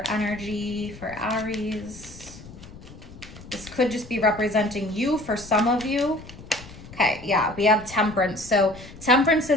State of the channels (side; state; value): left; noise; rumble, 17 dB below the sound